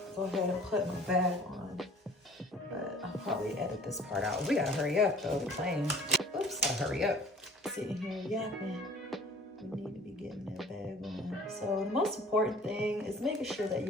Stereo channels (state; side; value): normal; both; correlation 0.48